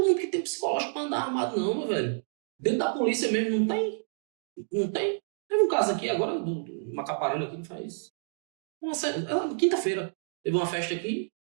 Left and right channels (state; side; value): silent; left; digital silence